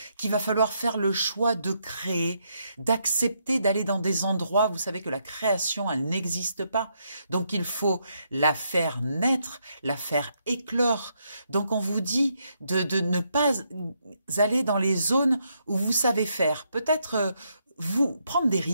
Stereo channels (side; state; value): both; inverted; correlation -0.77